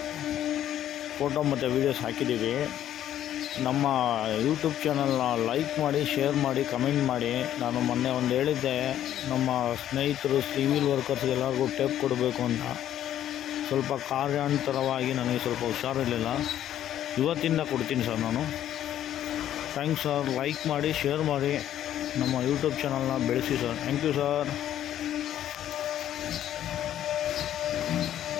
ಫೋಟೋ ಮತ್ತು ವೀಡಿಯೋಸ್ ಹಾಕಿದ್ದೀವಿ. ನಮ್ಮ ಯೂಟ್ಯೂಬ್ ಚಾನಲ್ನ ಲೈಕ್ ಮಾಡಿ, ಶೇರ್ ಮಾಡಿ, ಕಮೆಂಟ್ ಮಾಡಿ. ನಾನು ಮೊನ್ನೆ ಒಂದು ಹೇಳಿದ್ದೆ, ನಮ್ಮ ಸ್ನೇಹಿತರು ಸಿವಿಲ್ ವರ್ಕರ್ಸ್ಗೆಲ್ಲರಿಗೂ ಟೇಪ್ ಕೊಡಬೇಕು ಅಂತ. ಸ್ವಲ್ಪ ಕಾರ್ಯಾಂತರವಾಗಿ ನನಗೆ ಸ್ವಲ್ಪ ಹುಷಾರಿರಲಿಲ್ಲ. ಇವತ್ತಿಂದ ಕೊಡ್ತೀನಿ ಸರ್ ನಾನು. Thanks sir. ಲೈಕ್ ಮಾಡಿ, ಶೇರ್ ಮಾಡಿ, ನಮ್ಮ ಯೂಟ್ಯೂಬ್ ಚಾನಲ್ನ ಬೆಳೆಸಿ ಸರ್. Thank you sir.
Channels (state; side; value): quieter; right; 11.4 dB